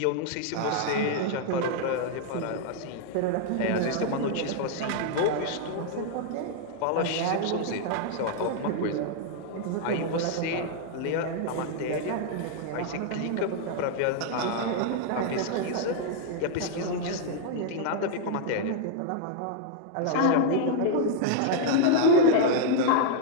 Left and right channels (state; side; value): different; both; correlation 0.00